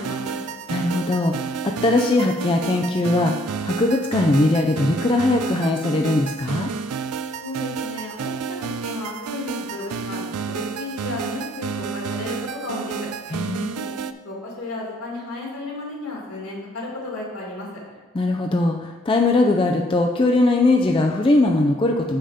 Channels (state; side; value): normal; both; correlation 0.66